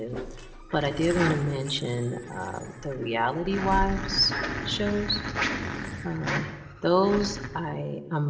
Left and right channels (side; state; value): both; identical; correlation 1.00